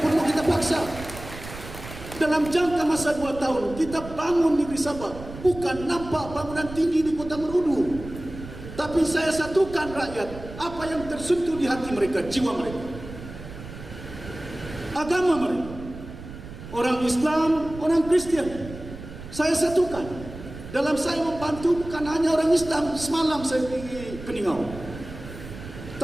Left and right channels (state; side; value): noise; right; rumble, 13 dB below the sound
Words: kita paksa. Dalam jangka masa 2 tahun kita bangun negeri Sabah, bukan nampak bangunan tinggi di Kota Marudu, tapi saya satukan rakyat. Apa yang tersentuh di hati mereka, jiwa mereka, agama mereka, orang Islam, orang Kristian, saya satukan. Dalam saya membantu bukan hanya orang Islam. Semalam saya pergi Keningau,